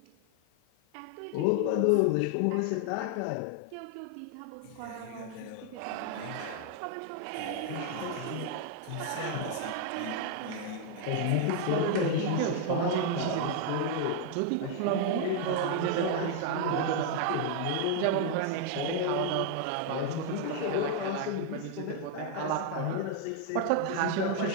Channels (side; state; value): both; different; correlation 0.00